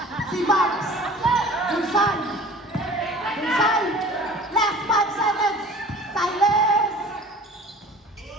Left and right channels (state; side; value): normal; both; correlation 0.44